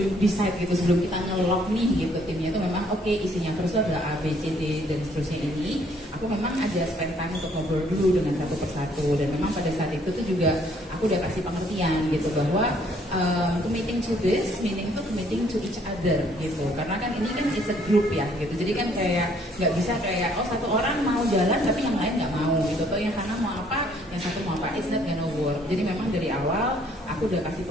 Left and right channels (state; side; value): normal; both; correlation 0.64